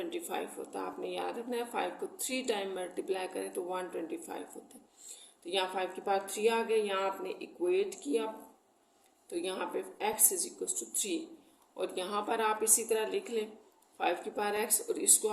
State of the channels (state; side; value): identical; both; correlation 1.00